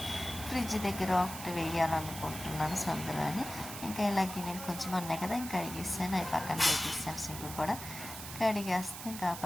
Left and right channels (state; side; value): noise; right; hiss, 10 dB below the sound